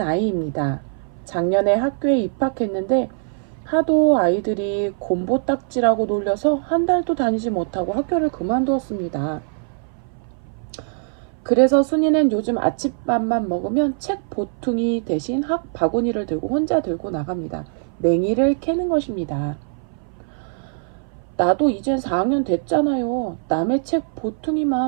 아이입니다. 작년에 학교에 입학했는데 하도 아이들이 곰보딱지라고 놀려서 한 달도 다니지 못하고 학교를 그만두었습니다. 그래서 순이는 요즘 아침밥만 먹으면 책 보퉁이 대신 학 바구니를 들고 혼자 들고 나갑니다. 냉이를 캐는 것입니다. 나도 이젠 4학년 됐잖아요. 남의 책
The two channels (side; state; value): left; silent; 58 dB below the other